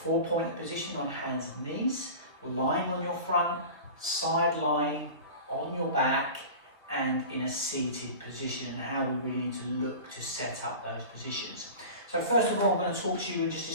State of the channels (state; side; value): inverted; both; correlation -0.34